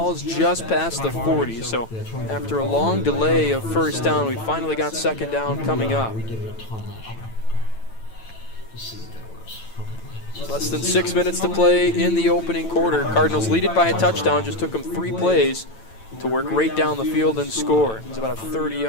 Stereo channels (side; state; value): right; late; 9.0 ms